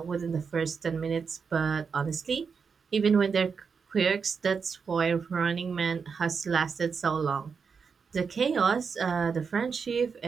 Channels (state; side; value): quieter; left; 5.8 dB